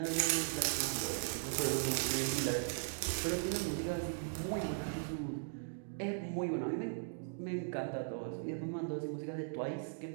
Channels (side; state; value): left; silent; digital silence